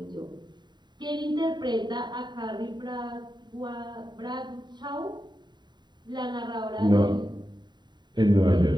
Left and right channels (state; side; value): late; left; 0.21 ms